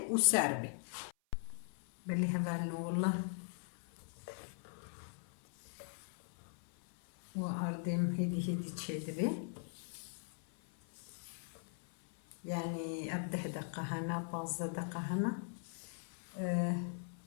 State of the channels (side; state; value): right; silent; 51 dB below the other